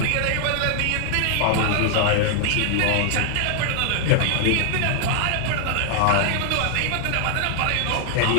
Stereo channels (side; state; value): both; different; correlation 0.00